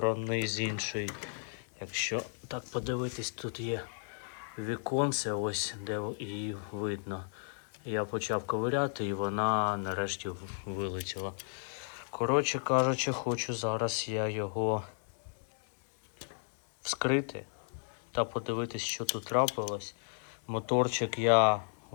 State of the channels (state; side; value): silent; right; digital silence